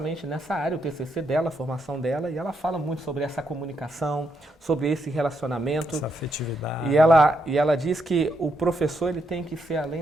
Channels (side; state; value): both; normal; correlation 0.79